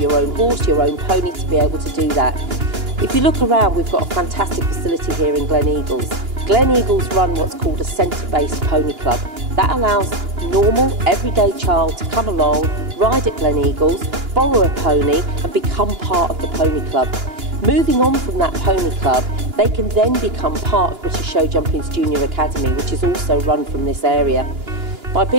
own horse, your own pony to be able to do that. If you look around, we've got a fantastic facility here in Glen Eagles. Glen Eagles run what's called a centre-based pony club. That allows normal, everyday child to come along, ride at Glen Eagles, borrow a pony and become part of the pony club. Moving on from that pony club, they can then become part of British Show Jumping's Junior Academy, which is also run from this area. By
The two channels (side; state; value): left; late; 2.9 ms